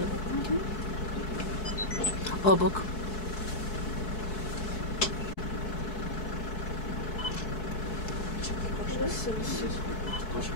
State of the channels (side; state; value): right; late; 4.6 ms